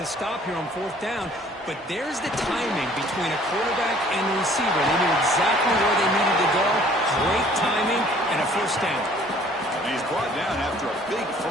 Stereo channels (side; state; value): both; normal; correlation 0.56